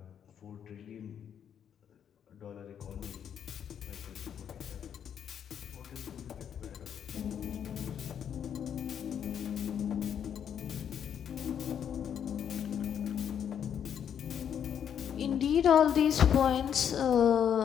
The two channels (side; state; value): right; quieter; 8.6 dB